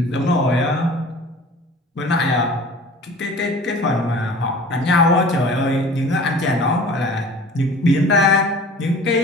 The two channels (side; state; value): both; normal; correlation 0.44